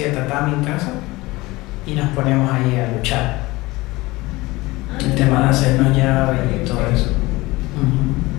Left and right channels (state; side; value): quieter; right; 20.9 dB